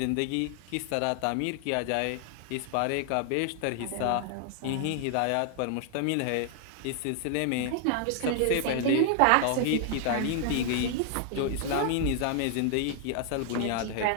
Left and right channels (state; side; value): different; both; correlation 0.00